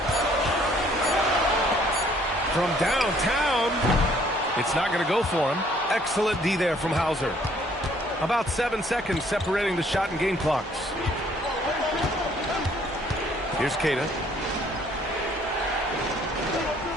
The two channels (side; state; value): both; normal; correlation 0.61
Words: From downtown. It's not going to go for him. Excellent D there from Hauser. About 7 seconds separating the shot and game clocks. Here's Queta.